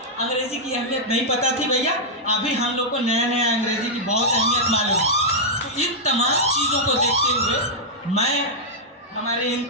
अंग्रेज़ी की अहमियत नहीं पता थी भैया, अभी हम लोग को नया नया अंग्रेज़ी की बहुत अहमियत मालूम है। तो इन तमाम चीज़ों को देखते हुए मैं हमारे इन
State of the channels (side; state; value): both; normal; correlation -0.05